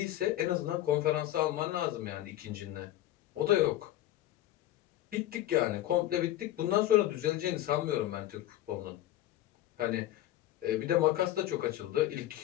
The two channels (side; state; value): right; quieter; 14.1 dB